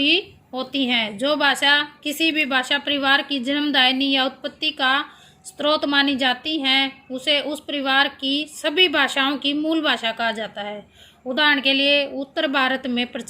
होती हैं। जो भाषा किसी भी भाषा परिवार की जन्मदायिनी या उत्पत्ति का स्रोत मानी जाती हैं उसे उस परिवार की सभी भाषाओं की मूल भाषा कहा जाता है। उदाहरण के लिए उत्तर भारत में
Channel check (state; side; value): identical; both; correlation 1.00